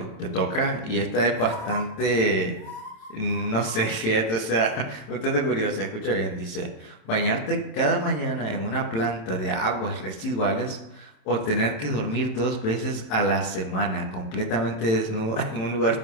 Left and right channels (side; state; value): right; late; 27 ms